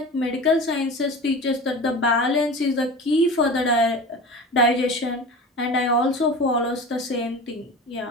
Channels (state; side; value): normal; both; correlation 0.33